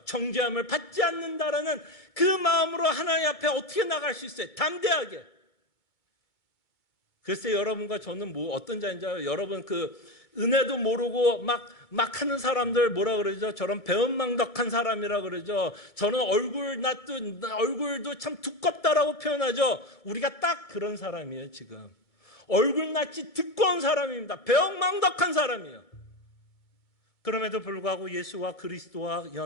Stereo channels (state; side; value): late; right; 2.2 ms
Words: 정죄함을 받지 않는다라는 그 마음으로 하나님 앞에 어떻게 나갈 수 있어요? 담대하게. 글쎄 여러분과 저는 어떤 자인지 알아요? 여러분 은혜도 모르고 막 하는 사람들 저런 배은망덕한 사람이라 그러죠. 저는 얼굴도 참 두껍다라고 표현하죠. 우리가 딱 그런 사람이에요 지금. 얼굴낯이 두꺼운 사람입니다. 배은망덕한 사람이에요. 그럼에도 불구하고 예수와 그리스도와